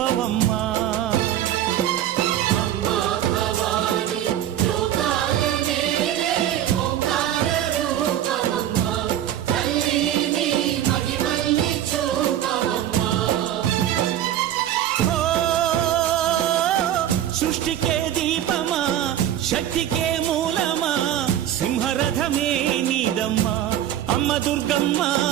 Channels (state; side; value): quieter; left; 11.5 dB